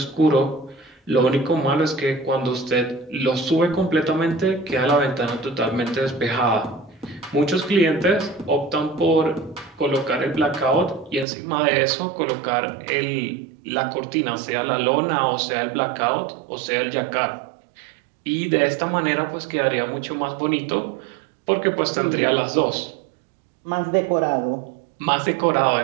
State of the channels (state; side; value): drops out; left; at 11.2 s